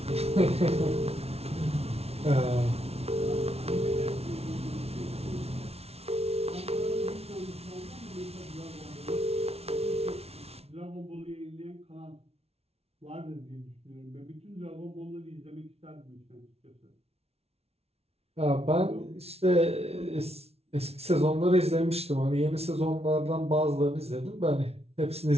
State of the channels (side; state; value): left; late; 0.30 ms